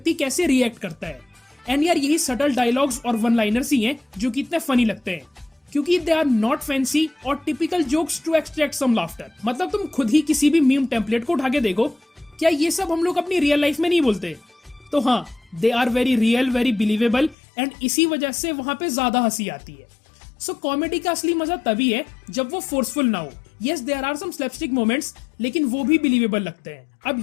कैसे रिएक्ट करता है। एंड यार यही सटल डायलॉग्स और वन लाइनर्स ही हैं जो कि इतने फनी लगते हैं, क्योंकि दे आर नॉट फैंसी और typical jokes to extract some laughter. मतलब तुम खुद ही किसी भी मीम टेम्पलेट को उठा के देखो, क्या ये सब हम लोग अपनी रियल लाइफ में नहीं बोलते? तो हाँ, they are very real, very believable, and इसी वजह से वहां पे ज्यादा हंसी आती है। सो कॉमेडी का असली मजा तभी है जब वो फोर्सफुल ना हो। Yes there are some slapstick moments, लेकिन वो भी बिलीवेबल लगते हैं। अब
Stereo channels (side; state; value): right; drops out; at 17.4 s